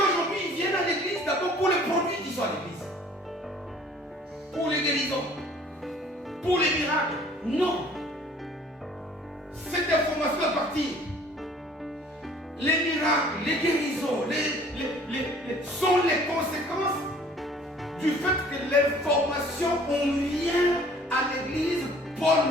aujourd'hui, ils viennent à l'église d'abord pour les produits qui sont à l'église. Pour les guérisons. Pour les miracles. Non. Cette information doit partir. Les miracles, les guérisons, sont les conséquences du fait que l'information, on vient à l'église, Paul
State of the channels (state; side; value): normal; both; correlation 0.54